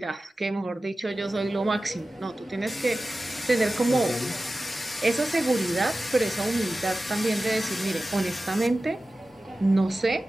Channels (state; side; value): normal; both; correlation 0.95